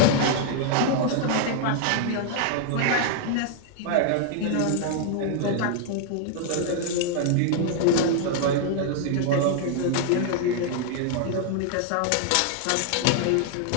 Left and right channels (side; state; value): both; different; correlation 0.00